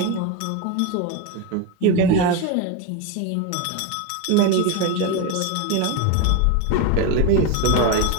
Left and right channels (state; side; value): different; both; correlation 0.03